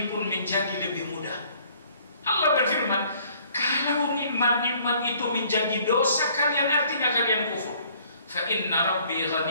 pun menjadi lebih mudah. Allah berfirman, kalau nikmat-nikmat itu menjadi dosa kalian, artinya kalian kufur. Fa inna rabbi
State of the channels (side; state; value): both; inverted; correlation -0.58